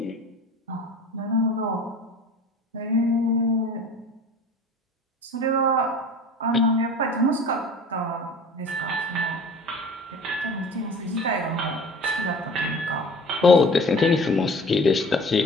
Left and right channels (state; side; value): normal; both; correlation 0.42